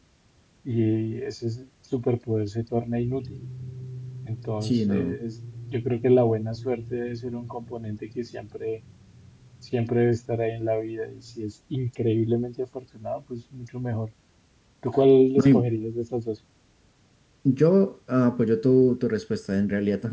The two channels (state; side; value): identical; both; correlation 1.00